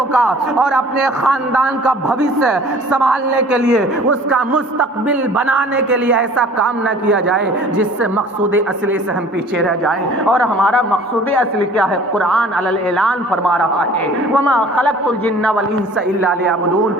کا اور اپنے خاندان کا بھوشیہ سنبھالنے کے لیے، اس کا مستقبل بنانے کے لیے ایسا کام نہ کیا جائے جس سے مقصود اصلی سے ہم پیچھے رہ جائیں۔ اور ہمارا مقصود اصلی کیا ہے؟ قرآن علی الاعلان فرما رہا ہے وَمَا خَلَقْتُ الْجِنَّ وَالْإِنسَ إِلَّا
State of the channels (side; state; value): both; normal; correlation 0.49